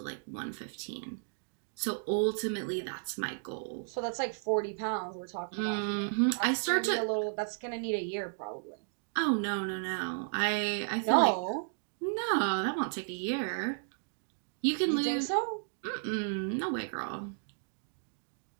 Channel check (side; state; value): left; silent; digital silence